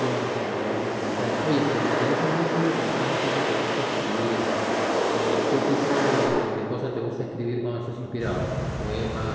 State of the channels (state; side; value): identical; both; correlation 1.00